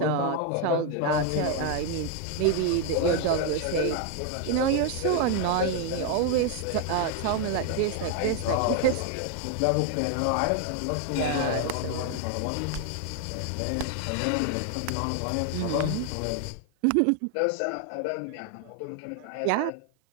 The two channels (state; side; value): different; both; correlation 0.01